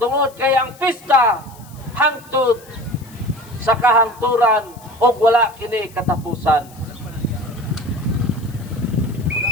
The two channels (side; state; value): left; noise; hiss, 24 dB below the sound